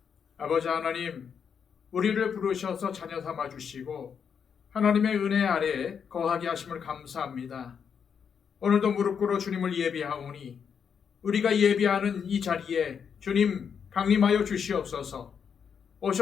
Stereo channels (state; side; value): quieter; right; 7.0 dB